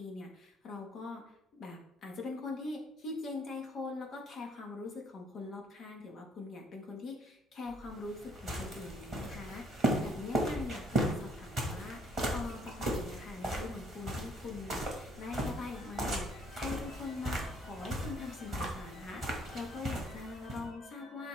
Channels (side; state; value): both; normal; correlation 0.64